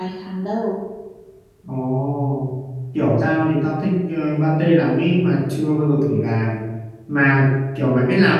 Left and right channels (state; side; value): identical; both; correlation 1.00